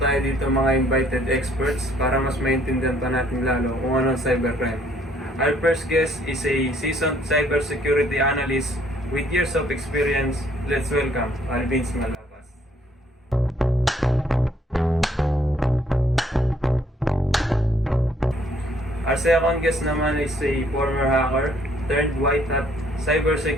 dito mga invited experts para mas maintindihan pa natin lalo kung ano ang cybercrime. Our first guest is a seasoned cybersecurity analyst with years of experience. Let's welcome Alvin Malapas. Our second guest naman is a former hacker, turned white hat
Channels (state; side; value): normal; both; correlation 0.64